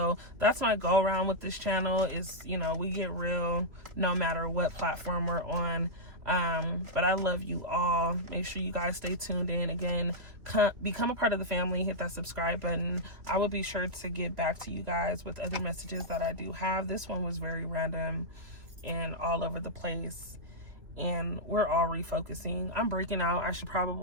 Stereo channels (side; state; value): left; late; 2.9 ms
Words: that's my go around with this channel is, we get real no matter what platform we're on. But I love you all. Make sure you guys stay tuned in. Again, become a part of the family. Hit that subscribe button. I will be sure to get back to you guys with other messages that I do have. This one was very random and all over the place, and we're all refocusing. I'm breaking out. I should